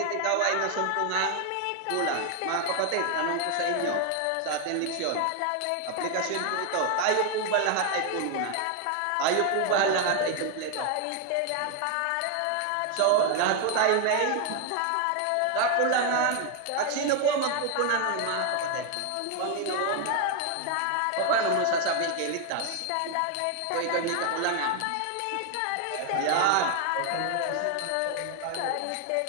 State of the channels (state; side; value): different; both; correlation 0.00